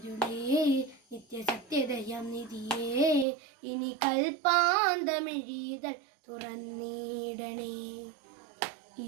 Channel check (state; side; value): drops out; left; at 3.2 s